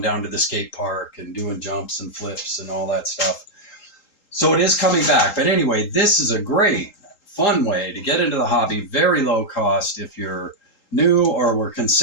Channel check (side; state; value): right; late; 3.8 ms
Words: down to the skate park and doing jumps and flips and all that stuff. So it is coming back. But anyway, this is a great, fun way to get into the hobby. Very low cost if you're new or were